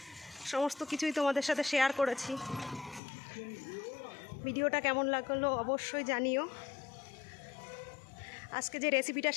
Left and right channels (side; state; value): right; drops out; at 3.0 s